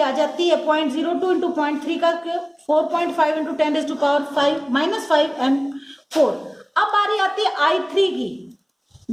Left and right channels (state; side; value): identical; both; correlation 1.00